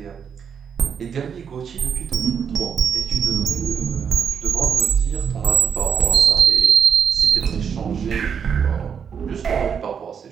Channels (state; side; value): quieter; left; 7.2 dB